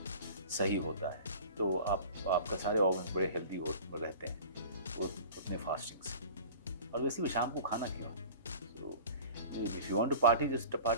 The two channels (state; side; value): inverted; both; correlation -0.41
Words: सही होता है। तो आपका सारे ऑर्गन बड़े हेल्दी रहते हैं वो उतने फास्टिंग से। और वैसे भी शाम को खाना क्यों? So if you want to party just